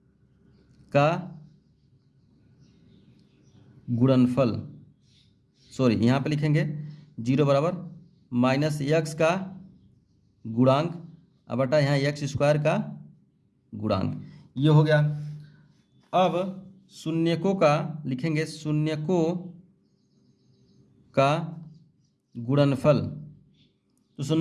का गुणनफल, सॉरी यहाँ पे लिखेंगे 0 बराबर माइनस एक्स का गुणांक अब बटा यहाँ एक्स स्क्वायर का गुणांक, ये हो गया। अब शून्यकों का लिखेंगे शून्यकों का गुणनफल, तो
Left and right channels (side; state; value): both; identical; correlation 1.00